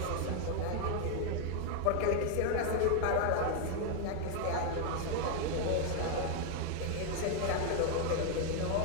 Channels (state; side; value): different; both; correlation 0.01